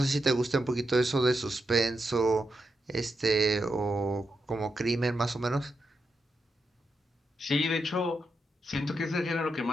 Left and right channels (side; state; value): both; normal; correlation 0.85